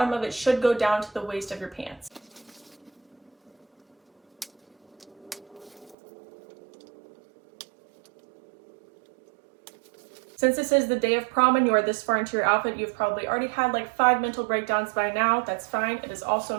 of it should go down to the waist of your pants. Since this is the day of prom and you are this far into your outfit, you've probably already had like 5 mental breakdowns by now. That's fine. It is also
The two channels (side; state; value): left; drops out; at 6.0 s